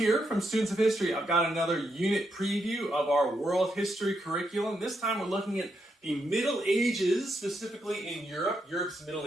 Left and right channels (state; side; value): normal; both; correlation 0.81